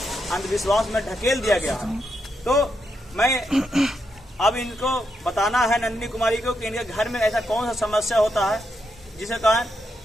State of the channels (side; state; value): both; normal; correlation 0.82